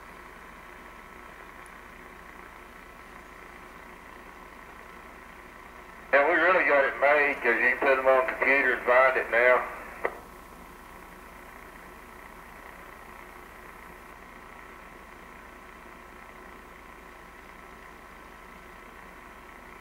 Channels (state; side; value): identical; both; correlation 1.00